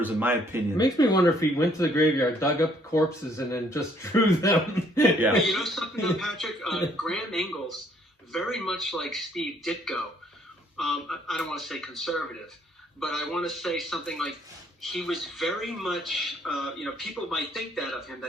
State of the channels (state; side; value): normal; both; correlation 0.65